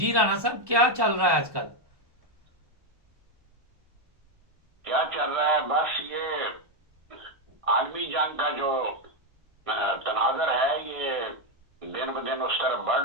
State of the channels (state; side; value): late; left; 1.2 ms